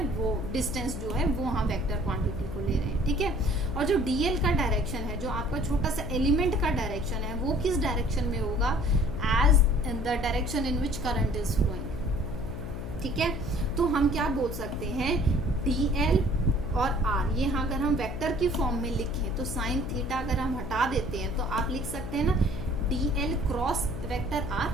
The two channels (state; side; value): noise; left; hum, 7 dB below the sound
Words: वो डिस्टेंस जो है वो हम वेक्टर क्वांटिटी को ले रहे हैं, ठीक है। और जो डीएल का डायरेक्शन है, जो आपका छोटा सा एलिमेंट का डायरेक्शन है, वो किस डायरेक्शन में होगा, as in the direction in which current is flowing, ठीक है। तो हम क्या बोल सकते हैं, डीएल और आर, ये अगर हम वेक्टर की फॉर्म में लिखें तो साइन थीटा अगर हम हटा देते हैं तो आप लिख सकते हैं ना डीएल क्रॉस वेक्टर